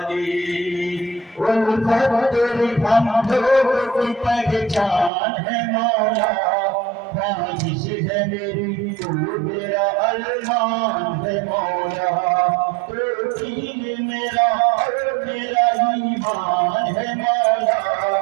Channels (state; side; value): drops out; left; at 5.1 s